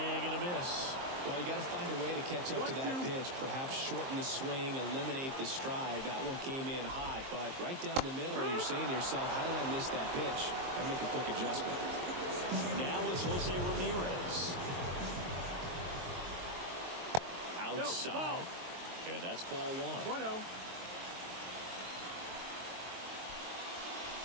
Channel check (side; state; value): left; late; 23 ms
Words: a miss. Well, you got to find a way to catch up to that pitch. Perhaps shorten the swing, eliminate the stride. That one came in hot, but right down the middle, you're saying to yourself, how did I miss that pitch? Got to make a quick adjustment. Now it's Jose Ramirez. Outside. And that's ball 1. 1-0.